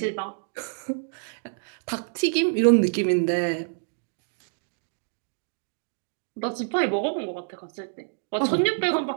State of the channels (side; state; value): left; silent; digital silence